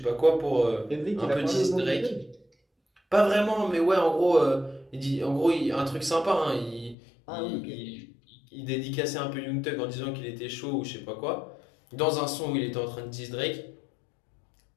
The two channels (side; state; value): right; drops out; at 7.0 s